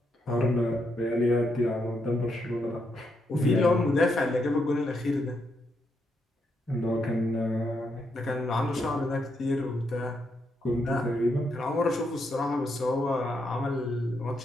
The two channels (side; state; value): both; normal; correlation 0.79